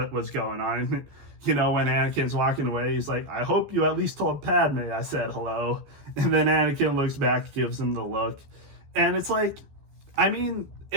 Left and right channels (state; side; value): late; left; 14 ms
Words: was going on. You know, when Anakin's walking away, he's like, I hope you at least told Padme I said hello. And then Anakin looks back, gives him the look. And it's like, I mean,